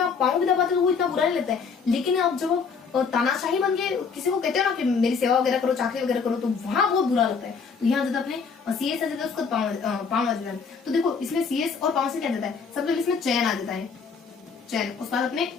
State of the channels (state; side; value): quieter; right; 5.6 dB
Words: आप पांव भी दबाते हो तो वो इतना बुरा नहीं लगता है। लेकिन अब जब तानाशाही बन के किसी को कहते हो ना कि मेरी सेवा वगैरह करो, चाकरी वगैरह करो, तो वहां बहुत बुरा लगता है। तो यहाँ जब अपने CS आ जाता है, उसका पांव आ जाता है। तो देखो, इसमें CS और पांव से क्या जाता है, सबसे पहले इसमें चयन आ जाता है, चयन। उसके बाद अपने